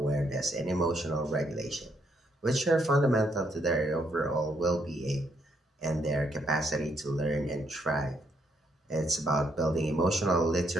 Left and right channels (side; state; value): both; normal; correlation 0.74